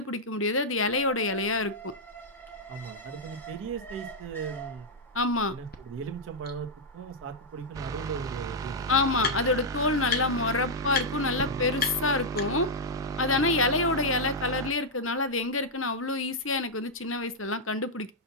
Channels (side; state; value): both; normal; correlation -0.05